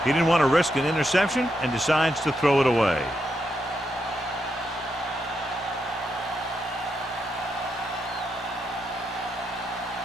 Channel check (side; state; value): both; normal; correlation 0.82